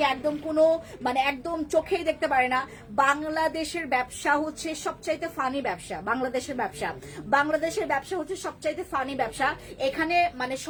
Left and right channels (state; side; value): identical; both; correlation 1.00